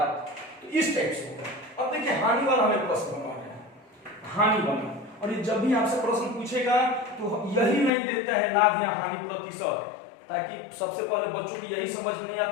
तो इस टाइप से होगा। अब देखिए हानि वाला हमें प्रश्न बनवाना है, हानि वाला। और ये जब भी आपसे प्रश्न पूछेगा तो यही नहीं देता है लाभ या हानि प्रतिशत, ताकि सबसे पहले बच्चों की यही समझ में नहीं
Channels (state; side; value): drops out; right; at 7.9 s